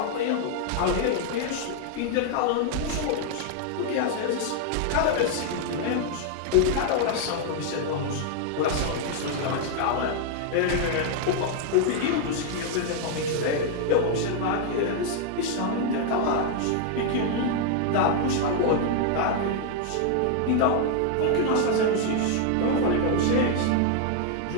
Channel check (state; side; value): different; both; correlation 0.00